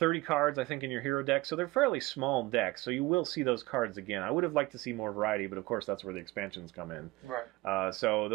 cards, I think, in your hero deck, so they're fairly small decks, so you will see those cards again. I would have liked to see more variety, but of course that's where the expansions come in. Right. So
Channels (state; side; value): quieter; left; 21.1 dB